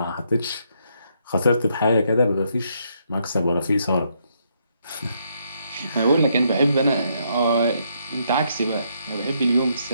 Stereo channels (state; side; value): inverted; both; correlation -0.74